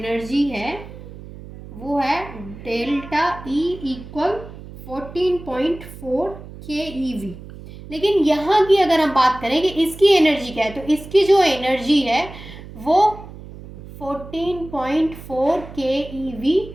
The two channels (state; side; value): noise; right; hum, 15 dB below the sound